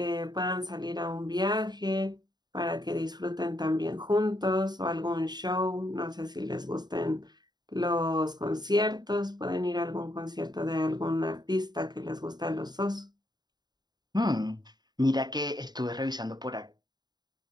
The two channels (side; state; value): left; late; 0.20 ms